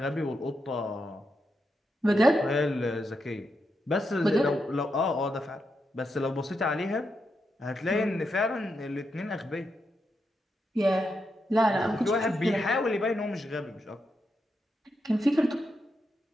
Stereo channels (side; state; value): both; normal; correlation 0.84